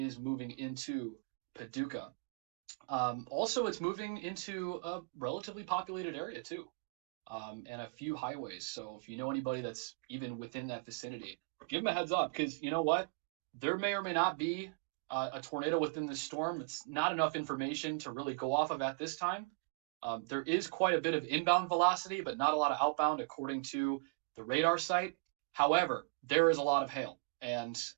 moving into Paducah. Also, it's moving into a relatively populated area too, and a few highways. So if you know anybody that's even within that vicinity, give them a heads up, because you know what? There may or may not be a tornado within this storm. It's not enough information to really go off of at this time. There is quite a bit of inbound velocity, but not a lot of outbound according to the radar site. However, there is a lot of hail, and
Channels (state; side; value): quieter; left; 32.5 dB